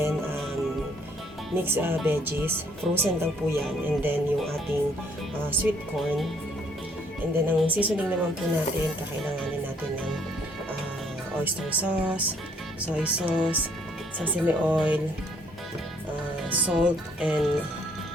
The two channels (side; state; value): both; normal; correlation 0.65